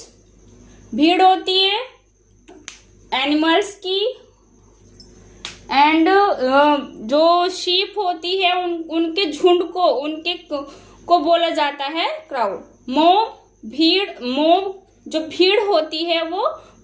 भीड़ होती है एनिमल्स की, एंड जो शीप होती है उनके झुंड को बोला जाता है क्राउड। मॉब, भीड़, मॉब जो भीड़ होती है वो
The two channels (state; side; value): identical; both; correlation 1.00